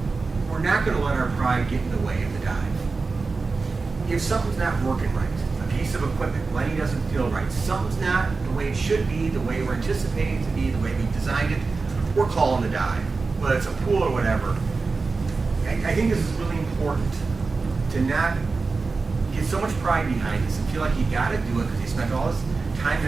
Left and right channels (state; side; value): quieter; left; 4.1 dB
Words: we're not going to let our pride get in the way of the dive. If something's not working right, a piece of equipment, Lenny doesn't feel right, something's not the way it should be, the way we're anticipating it to be, the way we designed it, we're calling the dive. Whether it's a pool or whatever. I think this is really important to not get so much pride behind this and feel like you got to do it because you spent all this time